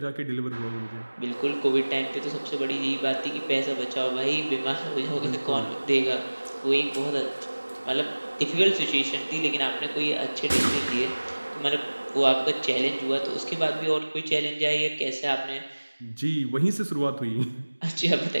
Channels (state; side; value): inverted; both; correlation -1.00